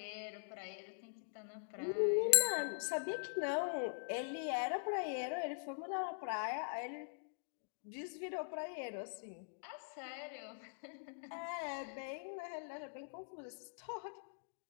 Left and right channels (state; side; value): silent; right; digital silence